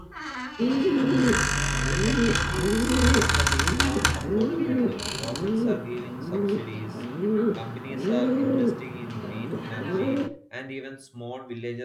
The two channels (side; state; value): both; identical; correlation 1.00